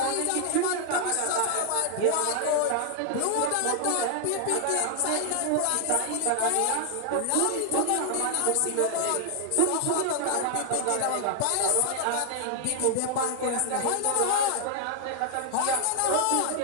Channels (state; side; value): different; both; correlation 0.00